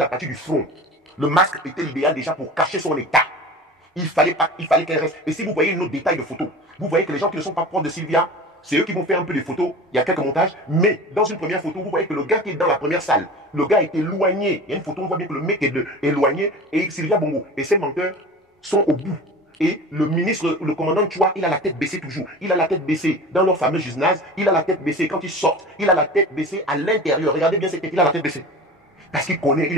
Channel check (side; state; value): both; normal; correlation 0.35